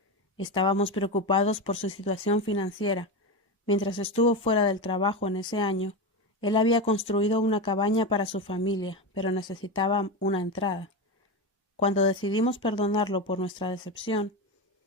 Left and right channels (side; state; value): both; normal; correlation 0.17